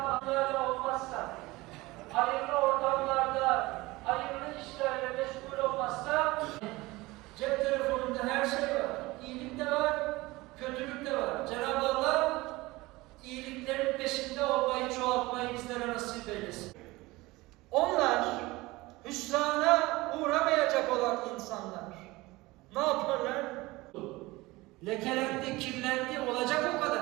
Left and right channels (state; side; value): quieter; left; 20.8 dB